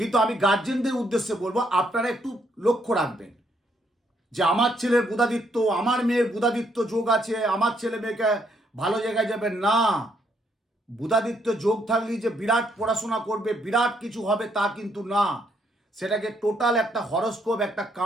আমি গার্জেনদের উদ্দেশ্যে বলবো, আপনারা একটু লক্ষ্য রাখবেন যে আমার ছেলের বুধাদিত্য, আমার মেয়ের বুধাদিত্য যোগ আছে, আমার ছেলে মেয়েকে ভালো জায়গায় যাবে না। বুধাদিত্য যোগ থাকলেই যে বিরাট পড়াশোনা করবে, বিরাট কিছু হবে তা কিন্তু না। সেটাকে টোটাল একটা হরস্কোপ, একটা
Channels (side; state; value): both; normal; correlation 0.72